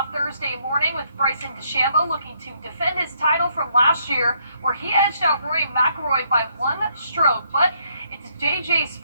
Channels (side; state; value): both; inverted; correlation -0.72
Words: Thursday morning with Bryson DeChambeau looking to defend his title from last year, where he edged out Rory McIlroy by 1 stroke. But it's JJ